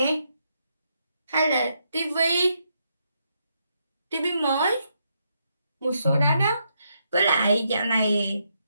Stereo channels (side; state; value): both; inverted; correlation -0.79